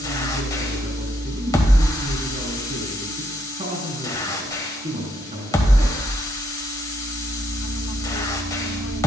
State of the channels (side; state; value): both; normal; correlation 0.74